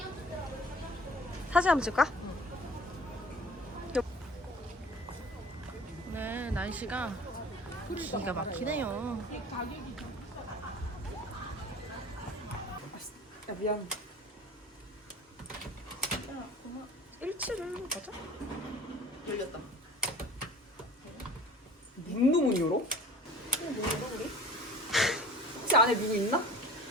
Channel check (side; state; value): both; normal; correlation 0.45